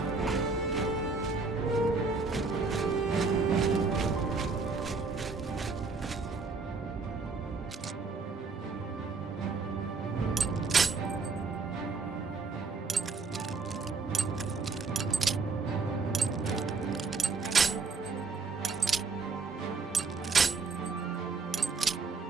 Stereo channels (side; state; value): left; quieter; 4.3 dB